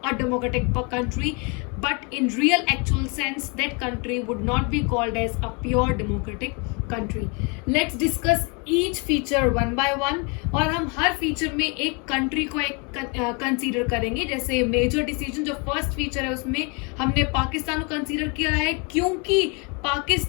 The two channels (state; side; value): quieter; right; 32.5 dB